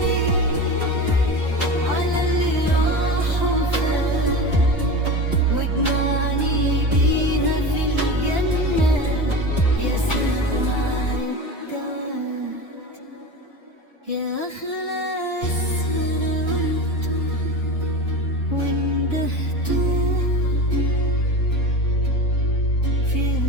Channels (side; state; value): both; normal; correlation 0.28